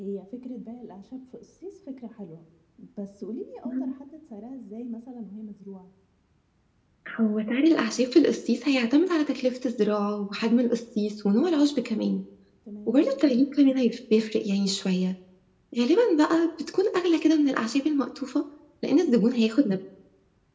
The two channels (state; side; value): identical; both; correlation 1.00